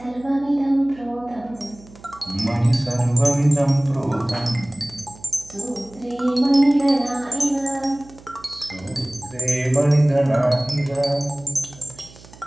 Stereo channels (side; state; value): right; noise; hum, 22 dB below the sound